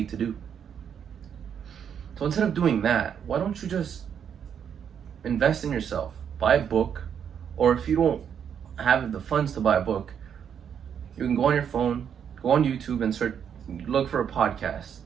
to do. So instead of doing that, why don't you just invest in yourself? Buy a book, or if you don't have the funds to buy a book, you can go on your phone, go on YouTube and look for a podcast.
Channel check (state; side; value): quieter; left; 8.1 dB